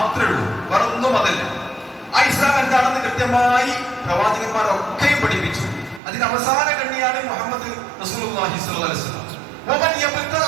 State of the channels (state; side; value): drops out; left; at 6.0 s